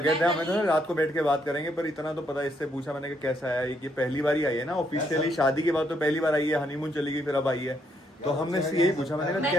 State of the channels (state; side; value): normal; both; correlation 0.74